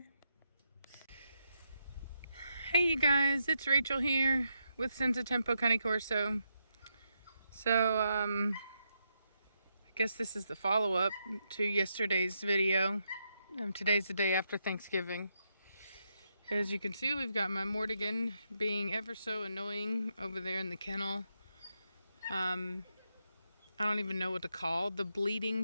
Hey you guys, it's Rachel here with Senza Tempo Cane Corso. So I guess this is the follow-up to yesterday's video. Today's the day after Thanksgiving. As you can see, we've got my Mortigan being ever so annoying over there in the kennel. I don't even know what to call the bleating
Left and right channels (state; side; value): inverted; both; correlation -0.82